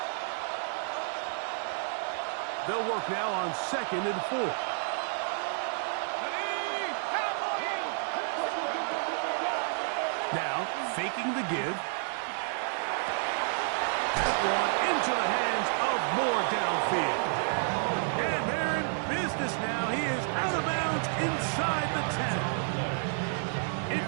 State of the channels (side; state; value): left; silent; 58 dB below the other